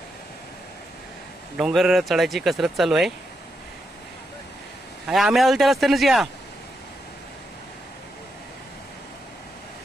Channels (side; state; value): both; normal; correlation 0.83